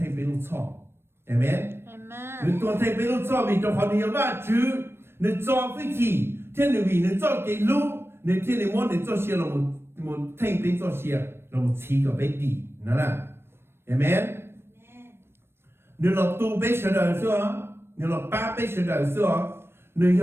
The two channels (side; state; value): left; late; 0.12 ms